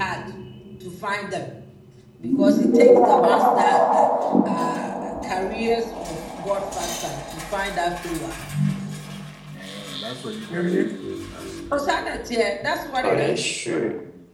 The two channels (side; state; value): both; identical; correlation 1.00